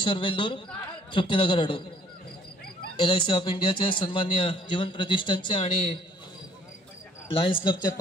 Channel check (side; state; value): both; normal; correlation 0.60